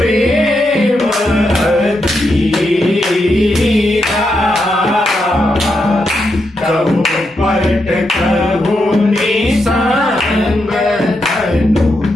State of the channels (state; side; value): normal; both; correlation 0.83